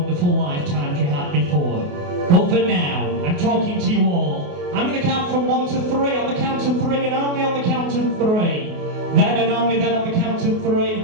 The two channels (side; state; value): left; late; 28 ms